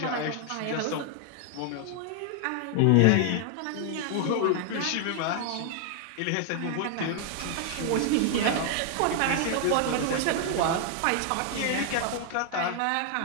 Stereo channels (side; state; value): both; different; correlation 0.00